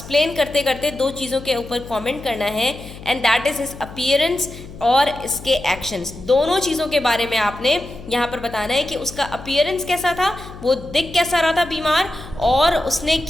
करते करते दो चीज़ों के ऊपर कमेंट करना है and that is his appearance और इसके एक्शंस. दोनों चीज़ों के बारे में आपने यहाँ पर बताना है कि उसका अपीयरेंस कैसा था, वो दिख कैसा रहा था बीमार, और उसने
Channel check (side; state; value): left; noise; hum, 15 dB below the sound